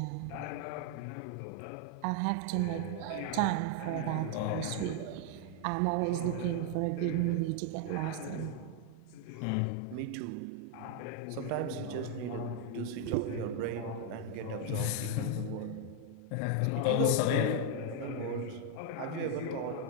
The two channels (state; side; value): different; both; correlation 0.00